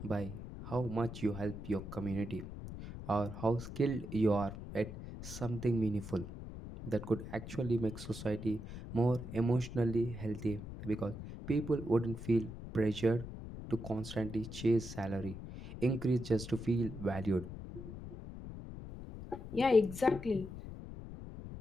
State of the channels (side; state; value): left; noise; rumble, 10 dB below the sound